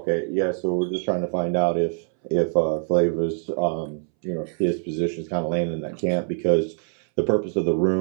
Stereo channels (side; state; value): left; silent; 63 dB below the other